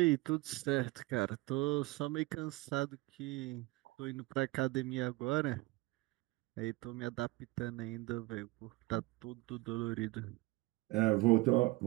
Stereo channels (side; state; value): left; quieter; 21.7 dB